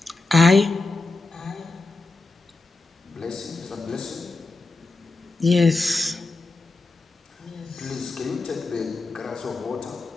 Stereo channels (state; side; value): quieter; right; 3.4 dB